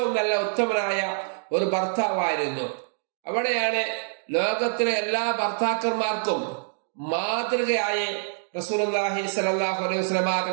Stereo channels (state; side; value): silent; left; digital silence